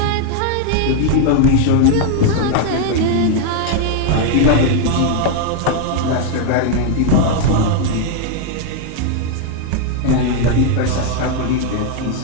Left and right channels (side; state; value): both; different; correlation 0.00